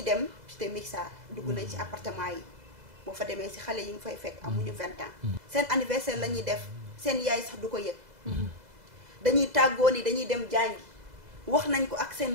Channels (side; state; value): left; late; 2.0 ms